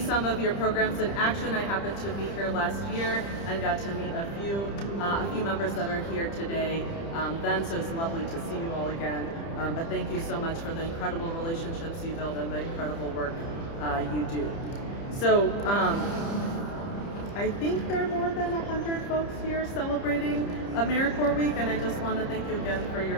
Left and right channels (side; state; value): right; late; 30 ms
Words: of your programs in action. I happened to be here last year and got to meet a few members that are here today. So it's lovely to see you all again. But thank you so much for the incredible relationships you build and the incredible work you do. So I think there are more than 100 folks here celebrating AmeriCorps Week, and I just want to thank you again for